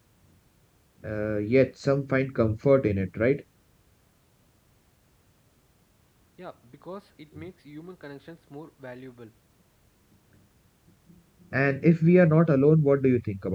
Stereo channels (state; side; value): identical; both; correlation 1.00